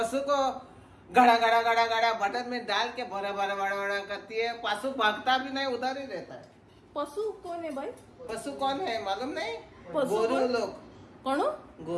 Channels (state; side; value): identical; both; correlation 1.00